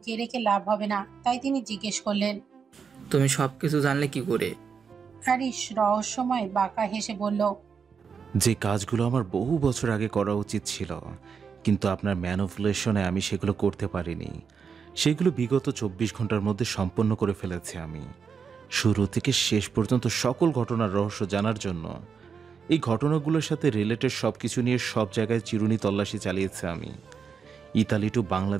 রেখে লাভ হবে না, তাই তিনি জিজ্ঞেস করলেন, তুমি সবকিছু জানলে কি করে? হ্যারিস রহস্যময় বাঁকা হেসে বলল, যে কাজগুলো আমার বহু বছর আগে করা উচিত ছিল, কিন্তু আপনার ম্যানিপুলেশনে আমি সেগুলো করতে পারিনি, সেগুলো বিগত 24 ঘন্টার মধ্যে সম্পন্ন করে ফেলেছি আমি। শুরু থেকে শেষ পর্যন্ত সকল ঘটনার রহস্য জানার জন্য এই ঘটনাগুলোর সাথে রিলেটেড সব কিছু নিয়ে সব জায়গায় চিরুনি তল্লাশি চালিয়েছে আমি। ইতালি টু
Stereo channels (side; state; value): left; quieter; 6.2 dB